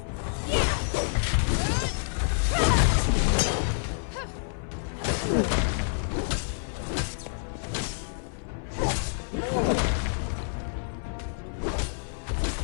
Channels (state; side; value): silent; right; 59 dB below the other